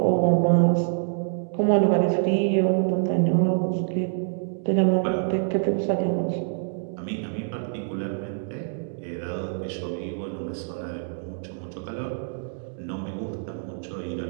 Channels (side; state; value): left; silent; digital silence